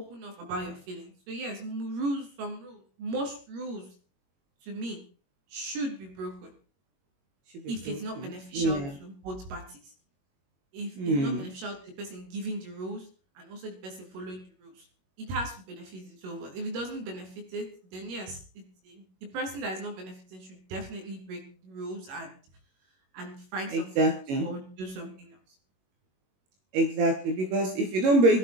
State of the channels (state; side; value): late; left; 21 ms